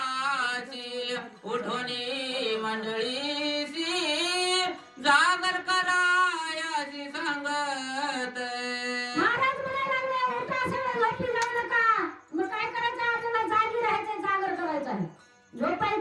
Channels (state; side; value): identical; both; correlation 1.00